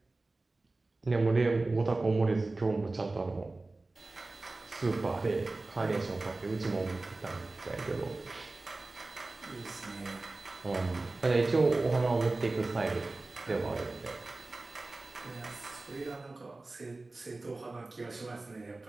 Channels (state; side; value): quieter; left; 3.2 dB